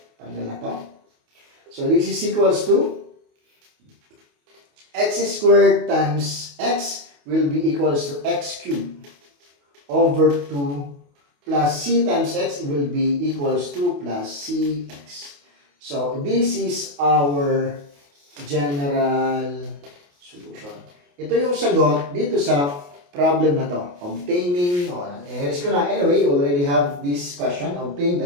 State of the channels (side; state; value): left; late; 28 ms